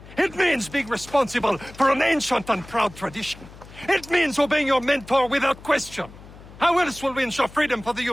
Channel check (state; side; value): noise; left; hum, 19 dB below the sound